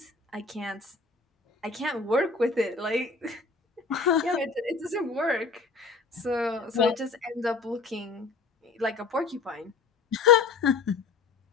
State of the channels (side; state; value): right; quieter; 4.2 dB